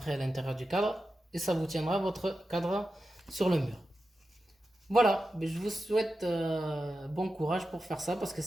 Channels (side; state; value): both; normal; correlation 0.91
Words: à l'intérieur du cadre. Et ça vous tiendra votre cadre sur le mur. Voilà, mais je vous souhaite bon courage pour faire ça parce que